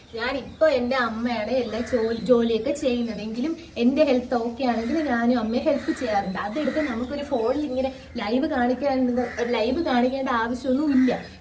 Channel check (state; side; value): identical; both; correlation 1.00